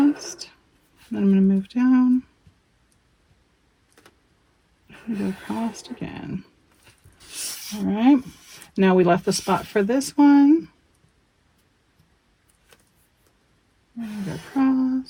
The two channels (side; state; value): both; identical; correlation 1.00